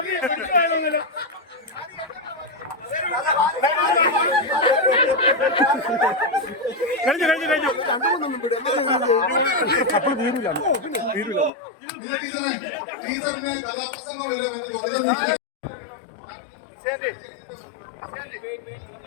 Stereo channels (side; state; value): right; drops out; at 11.5 s